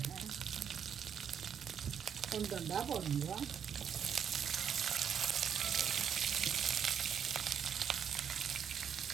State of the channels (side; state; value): left; quieter; 8.0 dB